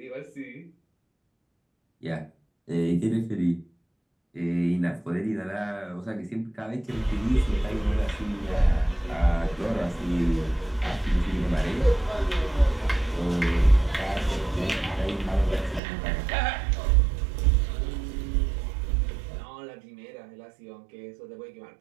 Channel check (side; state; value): left; drops out; at 15.8 s